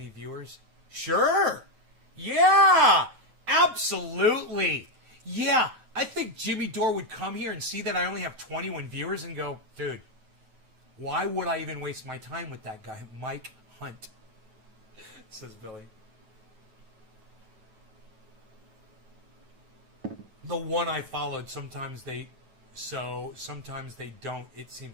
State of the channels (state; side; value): late; left; 9.2 ms